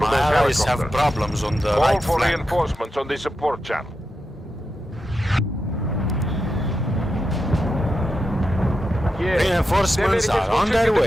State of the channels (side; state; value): both; normal; correlation 0.88